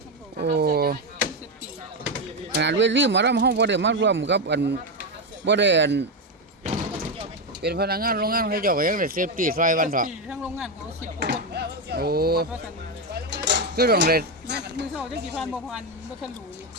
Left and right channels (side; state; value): both; normal; correlation 0.09